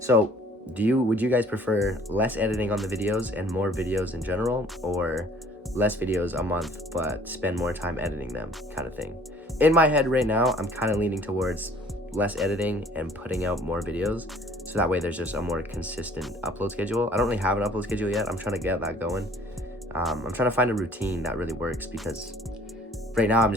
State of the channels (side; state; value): both; normal; correlation 0.55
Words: would you guys prefer less editing on the videos and more videos in general, or less videos a month but spend more time editing them kind of thing? In my head right now, I'm kind of leaning towards less editing and putting out more videos, so that way there's just a more consistent upload schedule. I don't really have an upload schedule yet. I'm trying to get that going. I'm trying to find a routine that really works, because right now I'm